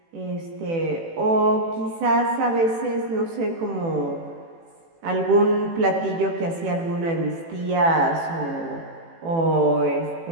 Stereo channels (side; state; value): left; late; 18 ms